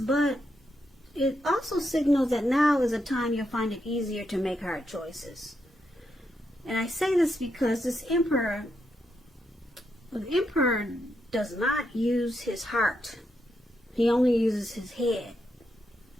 it also signals that now is a time you'll find it easier to make hard choices. And I say this because this Emperor, the Emperor does not use his heart. He only uses his head.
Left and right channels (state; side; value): normal; both; correlation 0.82